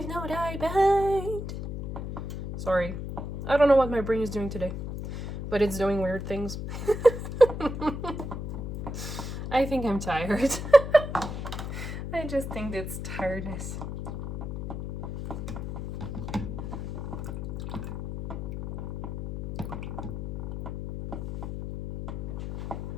No Dye Behind. Sorry. I don't know what my brain is doing today, but it's doing weird things. I think I'm tired. I just think it's tiredness.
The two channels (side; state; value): left; noise; hum, 5 dB below the sound